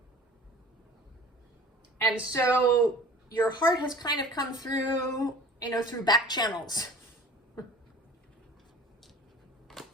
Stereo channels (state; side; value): normal; both; correlation 0.45